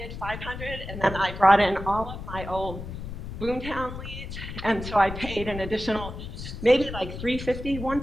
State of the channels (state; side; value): noise; left; rumble, 9 dB below the sound